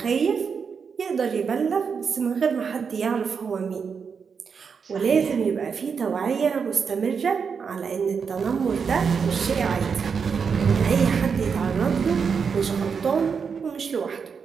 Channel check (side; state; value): left; quieter; 6.1 dB